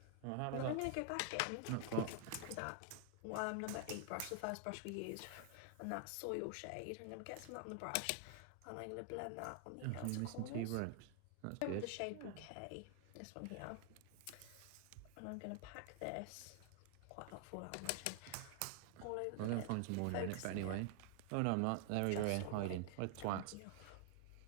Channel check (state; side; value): different; both; correlation 0.00